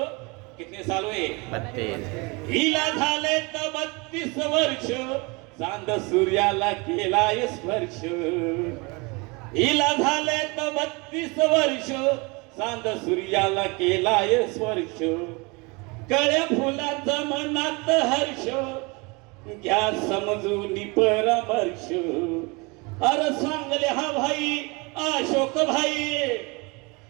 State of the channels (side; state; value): left; quieter; 27.5 dB